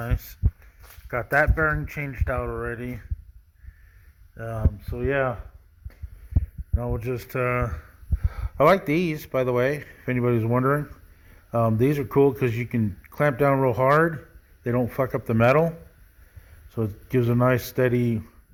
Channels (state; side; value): identical; both; correlation 1.00